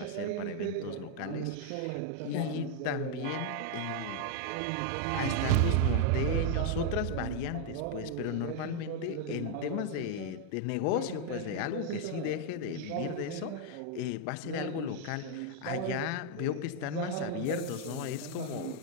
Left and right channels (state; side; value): different; both; correlation 0.00